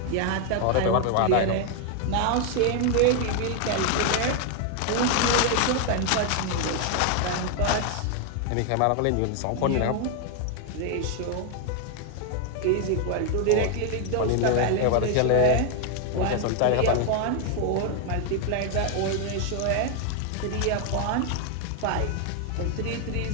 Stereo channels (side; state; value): both; different; correlation 0.00